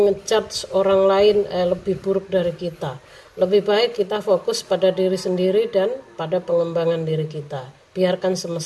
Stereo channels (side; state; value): both; identical; correlation 1.00